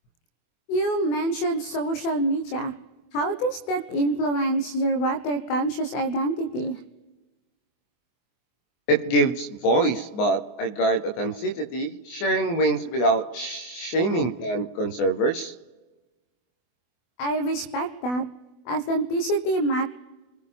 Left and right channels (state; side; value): late; right; 24 ms